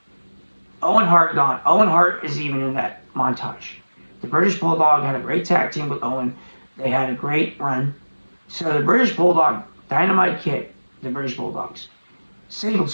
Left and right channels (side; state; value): both; inverted; correlation -1.00